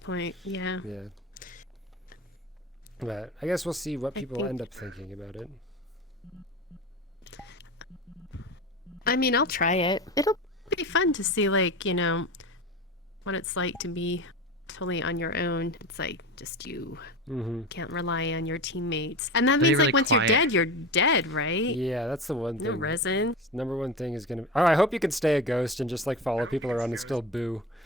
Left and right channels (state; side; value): normal; both; correlation 0.27